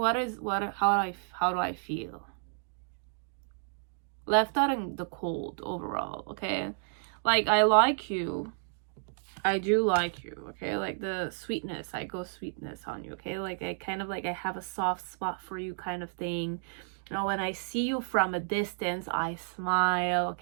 do I feel? Left out in the cold overall, okay? Like, I like you. I do like you, okay? Like, the sweetness, I go sweetness on you, okay? Like, I kind of like, I have a soft spot for you kind of thing. You know, when I see you from a distance, I smile,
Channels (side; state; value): left; silent; digital silence